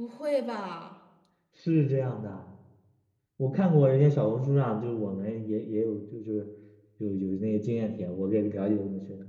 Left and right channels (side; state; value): both; identical; correlation 1.00